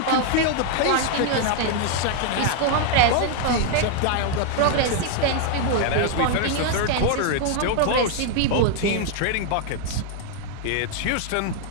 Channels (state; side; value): different; both; correlation 0.00